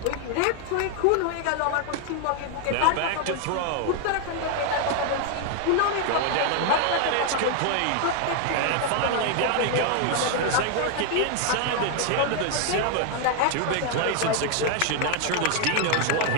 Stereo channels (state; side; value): different; both; correlation 0.00